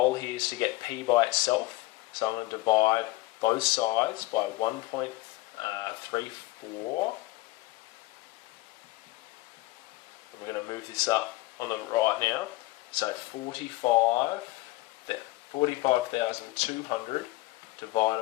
here is to get P by itself, so I'm going to divide both sides by 1.34. And we're going to move this up on the right now. So 45,200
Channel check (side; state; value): right; quieter; 19.8 dB